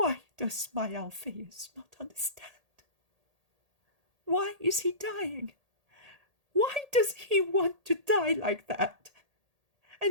does my Alphaeus not understand? Why is he dying? Why does he want to die like that?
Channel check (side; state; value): left; late; 1.8 ms